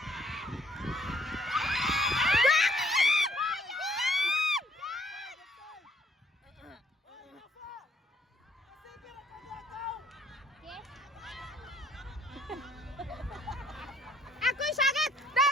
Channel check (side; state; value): both; normal; correlation 0.65